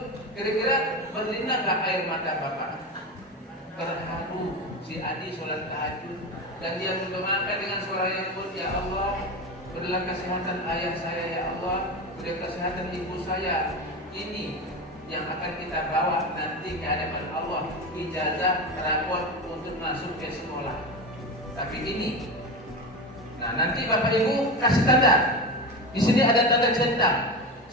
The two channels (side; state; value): both; normal; correlation 0.22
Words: Kira-kira berlinang nggak air mata Bapak? Terharu si Adi sholat tahajud. Dan dia mendoakan dengan suara yang lembut, ya Allah, berilah kesehatan ayah saya, ya Allah, berilah kesehatan ibu saya. Ini yang akan kita bawa nanti ke hadapan Allah, ijazah rapor untuk masuk ke sekolah. Tapi ini, nah nanti Bapak Ibu kasih tanda. Di sini ada tanda centang.